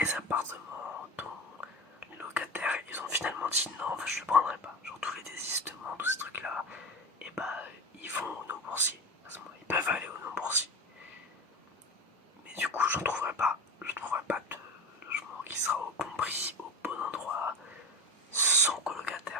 appartements dont les locataires ils ont finalement dit non, enfin, je le prendrai pas. Genre tous les désistements, tous ces trucs là, et bah ils vont aux non boursiers. À ce moment, ils peuvent aller aux non boursiers. Mais du coup, je ne trouverai pas de logement qui sera au bon prix, au bon endroit, sans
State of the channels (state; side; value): normal; both; correlation 0.27